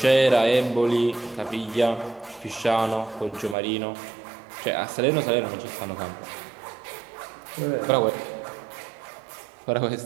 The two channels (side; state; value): left; drops out; at 3.6 s